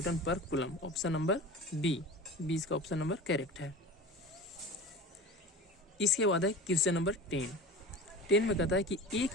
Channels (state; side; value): normal; both; correlation 0.34